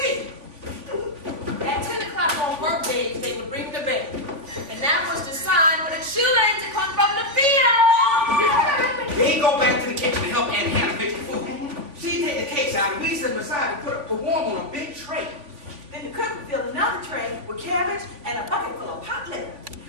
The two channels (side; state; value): left; late; 3.5 ms